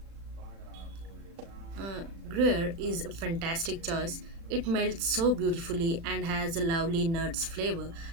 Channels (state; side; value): late; left; 36 ms